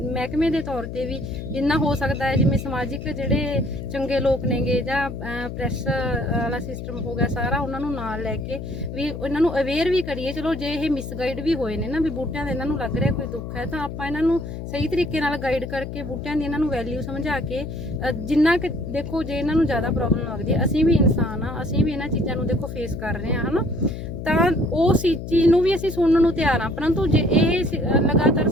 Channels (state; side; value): noise; left; hum, 8 dB below the sound